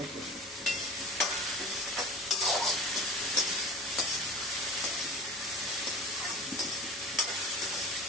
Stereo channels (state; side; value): normal; both; correlation 0.37